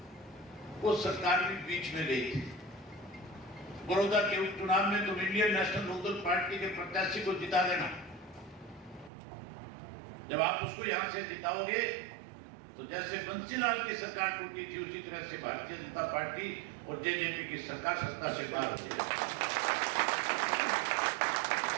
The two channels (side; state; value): left; drops out; at 9.1 s